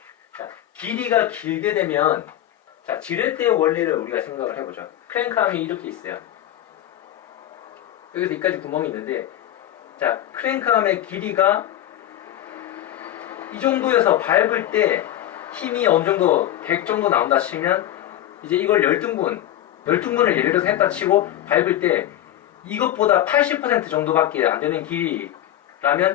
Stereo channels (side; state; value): right; quieter; 12.6 dB